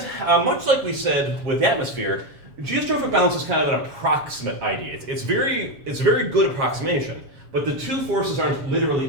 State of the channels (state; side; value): late; left; 7.2 ms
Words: much like we said with the atmosphere, geostrophic balance is kind of an approximate idea. It's a very good approximation, but the two forces aren't